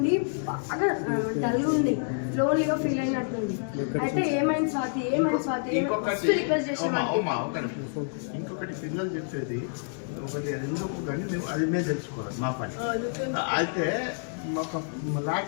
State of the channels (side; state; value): right; silent; digital silence